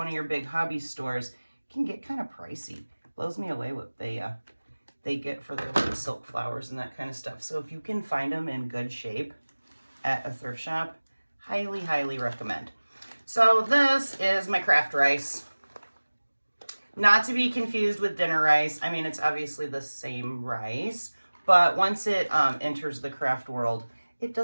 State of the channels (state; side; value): inverted; both; correlation -1.00